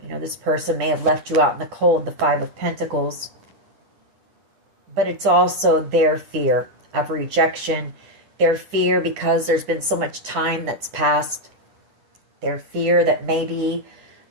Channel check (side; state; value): left; late; 9.8 ms